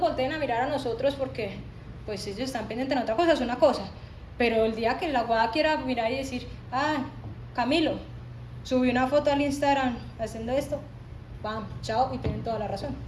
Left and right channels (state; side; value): identical; both; correlation 1.00